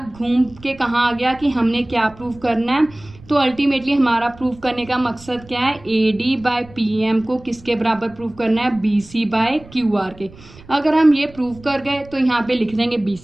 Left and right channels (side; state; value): right; noise; rumble, 22 dB below the sound